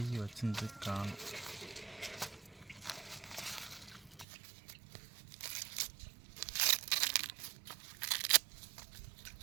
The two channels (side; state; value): left; drops out; at 4.2 s